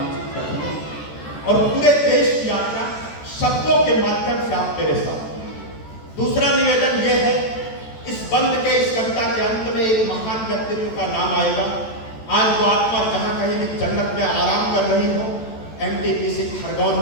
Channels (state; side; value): late; right; 14 ms